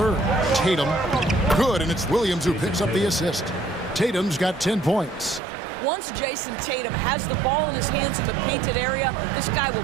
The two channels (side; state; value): left; drops out; at 5.4 s